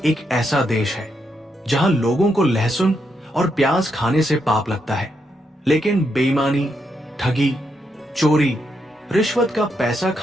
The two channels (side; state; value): both; normal; correlation 0.80